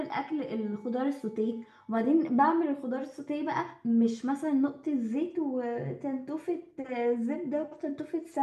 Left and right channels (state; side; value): identical; both; correlation 1.00